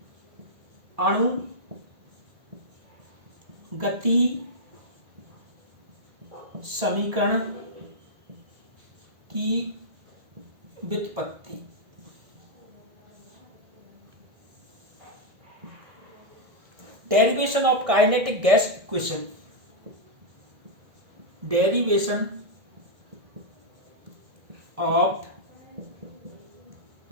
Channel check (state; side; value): late; left; 1.9 ms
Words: अणुगति समीकरण की व्युत्पत्ति। Derivation of kinetic gas equation. Derivation of